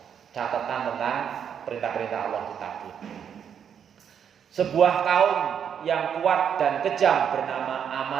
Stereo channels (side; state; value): left; quieter; 8.1 dB